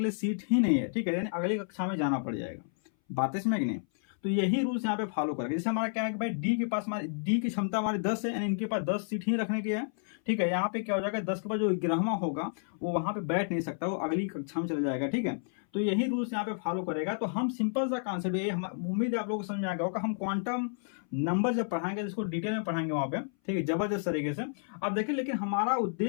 लिए सीट ही नहीं है। ठीक है, यानी अगली कक्षा में जाना पड़ जाएगा। बातें समझ कि नहीं। तो यही रूल्स यहाँ पे फॉलो करेंगे। जैसे हमारा क्या है कि भाई डी के पास, हमारी डी की क्षमता हमारी 10 है, यानी इनके पास 10 सीट ही रखने की है। ठीक है, यहाँ पे क्या हो जाएगा, 10 के बाद जो 11वां होगा वो वहां पे बैठ नहीं सकता, वो अगली कक्षा में चला जाएगा। ठीक है, तो यही रूल्स यहाँ पे फॉलो करेगा। तो हम सिंपल सा कॉन्सेप्ट, ये उम्मीद है आप लोगों को समझ में आ गया होगा। हम क्वांटम नंबर जब पढ़ाएंगे इसको डिटेल में पढ़ाएंगे वहां पे, ठीक है, जबरदस्त तरीके से। अब देखिए, लेकिन हमारा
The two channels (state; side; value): silent; right; 57 dB below the other